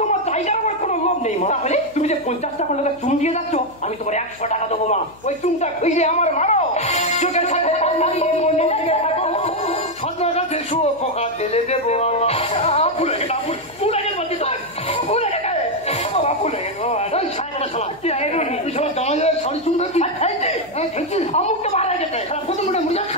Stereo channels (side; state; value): left; noise; hum, 25 dB below the sound